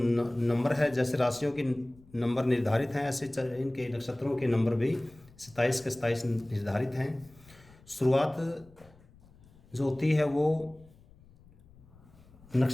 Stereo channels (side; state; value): left; noise; rumble, 26 dB below the sound